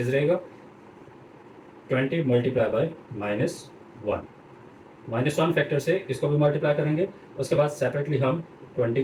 रहेगा, 20 मल्टीप्लाई बाय -1 -1 फैक्टर से इसको भी मल्टीप्लाई करेंगे। उसके बाद सेपरेटली हम 20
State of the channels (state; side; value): identical; both; correlation 1.00